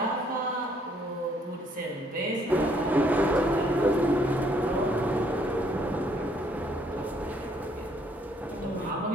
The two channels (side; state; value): both; normal; correlation 0.66